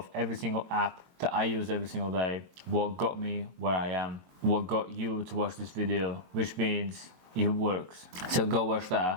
every single app that I use every single day, what got me where I am, what got you to watch this video, which means it works. So go watch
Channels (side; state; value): left; late; 23 ms